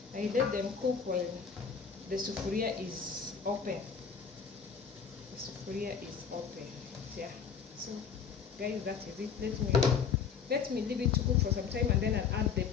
I let them cook while the sufuria is open. The sufuria is open. Yeah. So guys, that is it. Let me leave it to cook for some time and then I'll add the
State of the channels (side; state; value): right; quieter; 6.5 dB